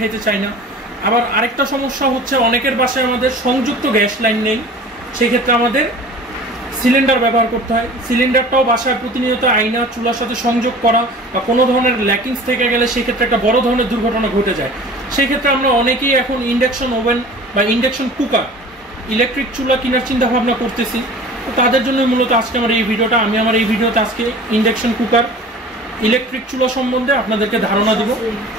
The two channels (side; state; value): both; normal; correlation 0.42